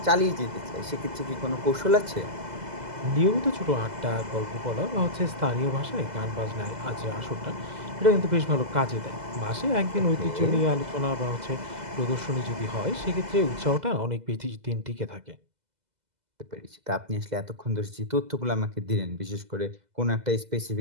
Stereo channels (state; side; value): late; left; 2.0 ms